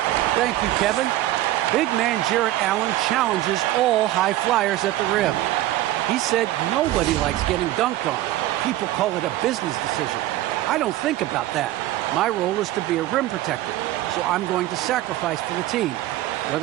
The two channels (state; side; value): quieter; left; 15.2 dB